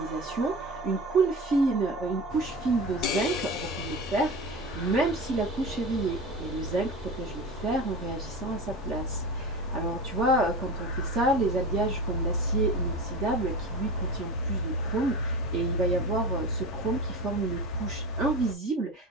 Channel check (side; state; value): both; normal; correlation 0.30